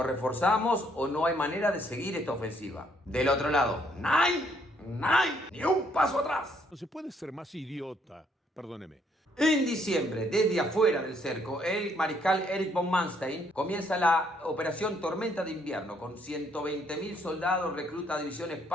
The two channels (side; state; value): both; normal; correlation 0.69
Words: reforzamos o no hay manera de seguir esta ofensiva. Del otro lado, ¡Nein! ¡Ni un paso atrás! No se puede ser más idiota. Perdóneme. En diciembre, desde afuera del cerco, el mariscal Erich von Manstein comienza la operación Tormenta de Invierno con 120.000 soldados, recluta divisiones